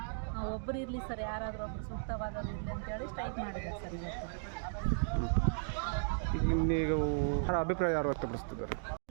ಒಬ್ಬರು ಇರಲಿ ಸರ್, ಯಾರಾದರೂ ಒಬ್ಬರು ಸೂಕ್ತವಾದದ್ದು ಇರಲಿ ಅಂತೇಳಿ ಸ್ಟ್ರೈಕ್ ಮಾಡಿದ್ದಾರೆ ಸರ್ ಇವತ್ತು. ನೀವು ಅಭಿಪ್ರಾಯ ಯಾರು ವ್ಯಕ್ತಪಡಿಸ್ತಿದ್ದಾರೆ?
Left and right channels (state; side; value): silent; left; digital silence